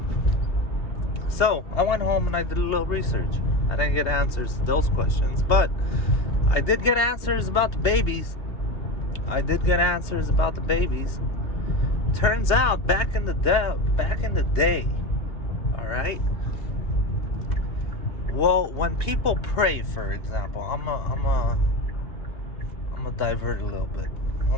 So, I went home and I did a little research. I didn't get answers to those questions, but I did get answers about the babies. turns out back in the day, all right. Well, when people pray, for example, I'm a divert a little bit.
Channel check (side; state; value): right; late; 2.9 ms